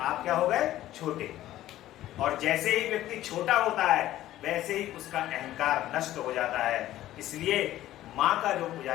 क्या हो गए? छोटे। और जैसे ही व्यक्ति छोटा होता है वैसे ही उसका अहंकार नष्ट हो जाता है। इसलिए माँ का जो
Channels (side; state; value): right; quieter; 14.1 dB